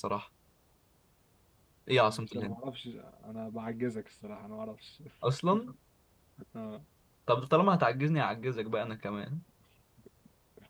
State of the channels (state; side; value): identical; both; correlation 1.00